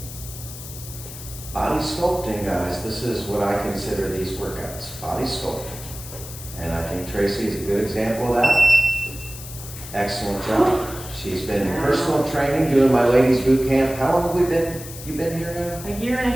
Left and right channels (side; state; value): left; noise; hiss, 13 dB below the sound